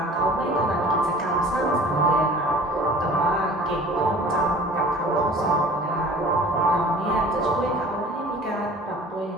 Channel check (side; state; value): both; normal; correlation 0.45